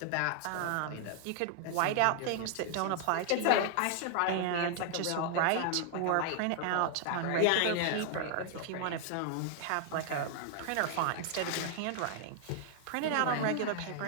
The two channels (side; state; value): both; different; correlation 0.00